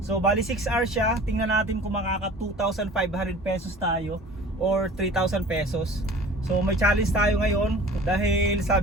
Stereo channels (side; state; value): both; normal; correlation 0.44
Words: So bali 6 hours siya. Tingnan natin kung makaka 2,500 pesos tayo or 3,000 pesos. So may challenge tayo ngayon dahil